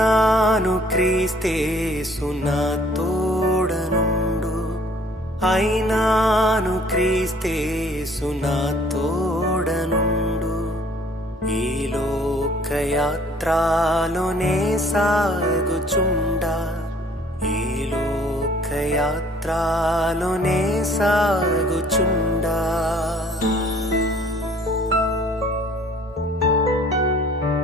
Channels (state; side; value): normal; both; correlation 0.56